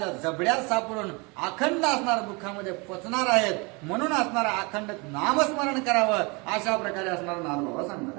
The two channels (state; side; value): quieter; left; 28.8 dB